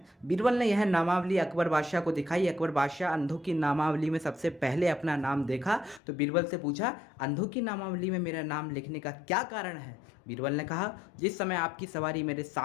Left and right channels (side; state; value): right; drops out; at 6.0 s